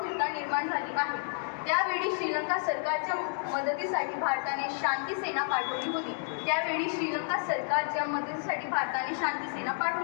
निर्माण झाली आहे। त्यावेळी श्रीलंका सरकारच्या मदतीसाठी भारताने शांती सेना पाठवली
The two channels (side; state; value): right; silent; 57 dB below the other